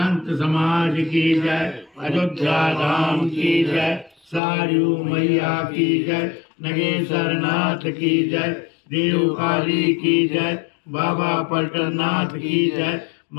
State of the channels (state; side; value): drops out; right; at 4.4 s